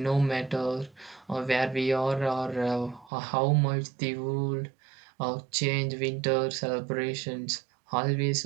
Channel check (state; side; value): drops out; left; at 3.1 s